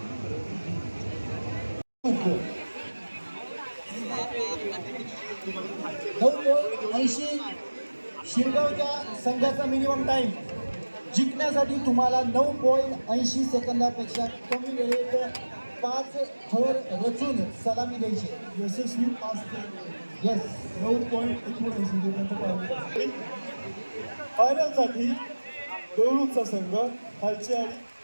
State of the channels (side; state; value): both; inverted; correlation -1.00